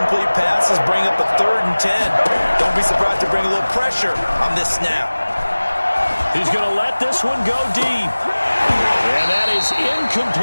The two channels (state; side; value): inverted; both; correlation -1.00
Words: passes, bring up a 3rd and 10. Don't be surprised to bring a little pressure on this snap. He's going to let this one go deep. And that is